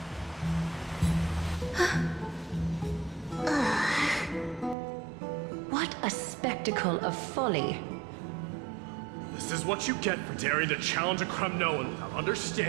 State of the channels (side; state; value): left; drops out; at 4.8 s